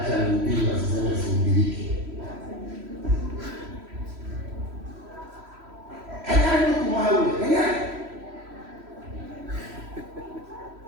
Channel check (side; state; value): left; late; 3.1 ms